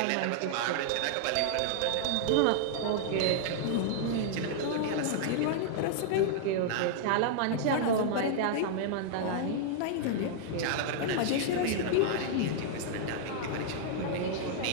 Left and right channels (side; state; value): both; different; correlation -0.01